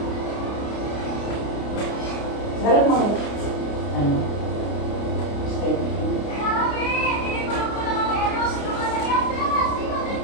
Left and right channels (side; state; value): right; late; 29 ms